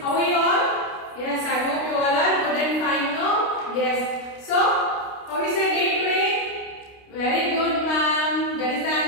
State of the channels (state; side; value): late; right; 29 ms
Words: are you all? Yes, I hope you all are good and fine now. Yes. So, how is your day today? Very good, ma'am. That is the